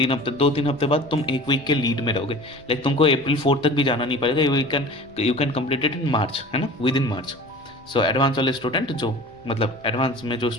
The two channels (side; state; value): left; noise; rumble, 27 dB below the sound